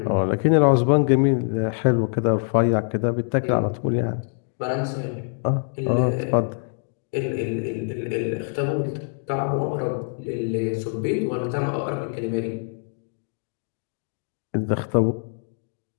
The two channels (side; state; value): right; silent; 61 dB below the other